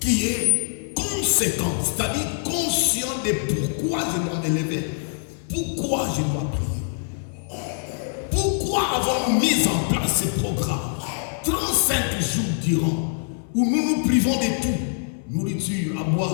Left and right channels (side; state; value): right; silent; digital silence